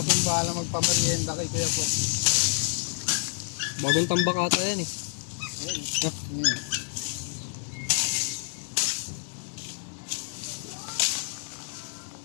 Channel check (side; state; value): right; silent; 59 dB below the other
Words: bahala magpamerienda kay Kuya po. Bagong tambak ata yan eh.